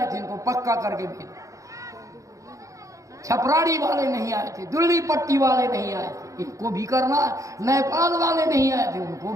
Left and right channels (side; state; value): left; late; 0.16 ms